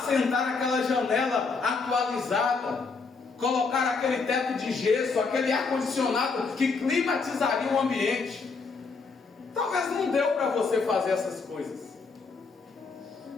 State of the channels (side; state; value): right; quieter; 4.6 dB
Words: aquela janela atualizada, colocar aquele teto de gesso, aquele ar-condicionado que climatizaria o ambiente. Talvez não deu para você fazer essas coisas.